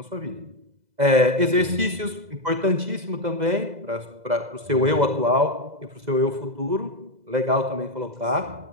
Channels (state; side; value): late; left; 2.0 ms